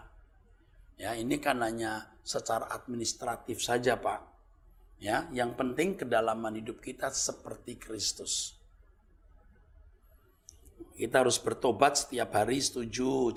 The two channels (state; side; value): identical; both; correlation 1.00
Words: Ya, ini kan hanya secara administratif saja, Pak. Ya, yang penting kedalaman hidup kita seperti Kristus. Kita harus bertobat setiap hari, setuju,